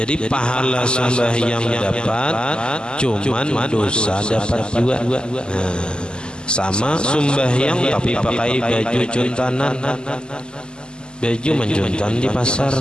pahala sembahyang dapat, cuman dosa dapat juga. Nah, sama sembahyang tapi pakai baju cuntanan, baju menjuntan di pasar,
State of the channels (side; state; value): right; late; 0.048 ms